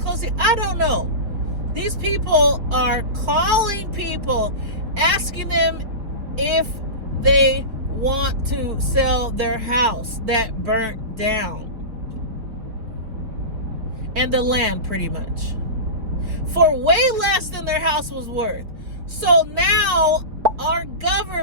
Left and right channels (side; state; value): left; late; 4.7 ms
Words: I don't know. These people are calling people, asking them if they want to sell their house that burnt down and the land pretty much for way less than their house was worth. So now our